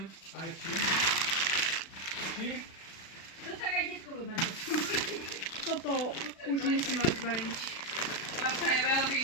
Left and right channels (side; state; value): right; late; 36 ms